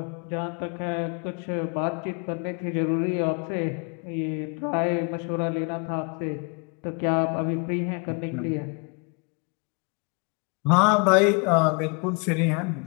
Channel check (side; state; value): right; quieter; 33.6 dB